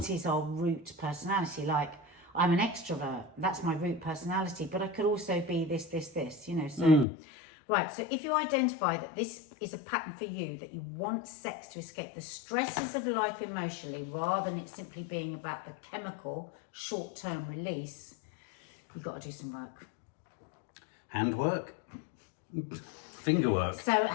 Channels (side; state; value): right; drops out; at 7.1 s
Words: is our root personality? Like, I'm an extrovert. That's my root personality. But I could also be this, So, right. So if you identify that this is a pattern for you, that you want sex to escape the stresses of life emotionally, rather than it simply being about the chemical short-term release, you've got to do some work. Handwork? Finger work. So